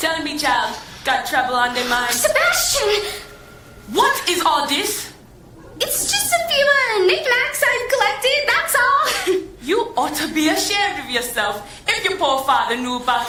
me, child, got trouble on their mind? Sebastian! What is all this? It's just a few knickknacks I've collected, that's all. You ought to be ashamed of yourself if your poor father knew about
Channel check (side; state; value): both; identical; correlation 1.00